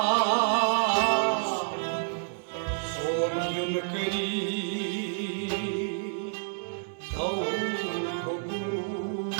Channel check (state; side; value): silent; left; 58 dB below the other